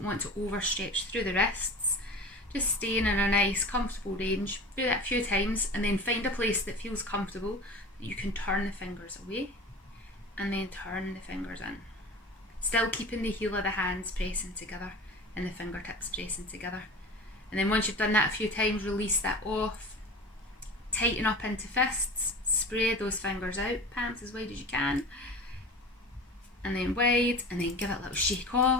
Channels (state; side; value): normal; both; correlation 0.35